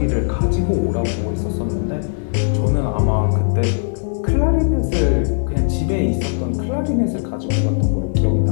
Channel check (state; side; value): silent; right; digital silence